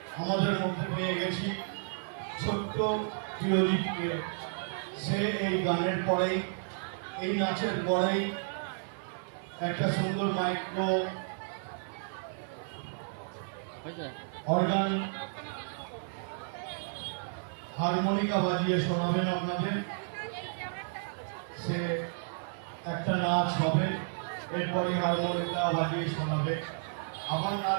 আমাদের মধ্যে পেয়ে গেছি ছোট্ট প্রিয়দীপকে। সে এই গানের পরেই, এই নাচের পরেই একটা সুন্দর মাইক্রো অর্গান হারমোনিকা বাজিয়ে শোনাবেন আপনাদের। সে একটা নাচ হবে, এরপরে হারমোনিকা বাজিয়ে শোনাবে, আবার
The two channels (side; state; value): left; silent; digital silence